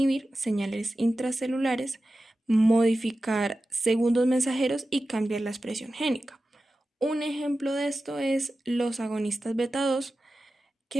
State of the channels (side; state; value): both; normal; correlation 0.94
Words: señales intracelulares, modificar segundos mensajeros y cambiar la expresión génica. Un ejemplo de esto es los agonistas beta 2,